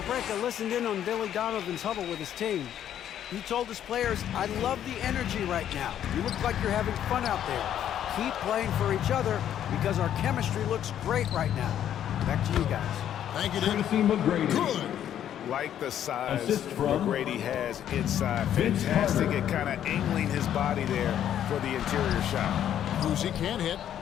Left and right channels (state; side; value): quieter; right; 10.4 dB